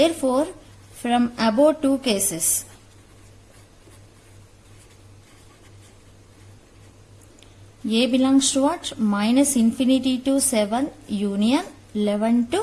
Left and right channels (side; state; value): both; identical; correlation 1.00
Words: from above two cases, A belongs to what? Minus infinity to 7 union 11